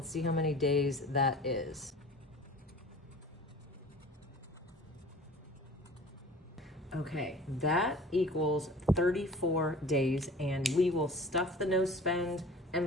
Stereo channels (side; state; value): both; normal; correlation 0.43